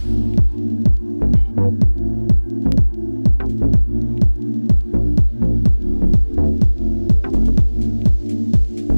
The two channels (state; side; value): inverted; both; correlation -1.00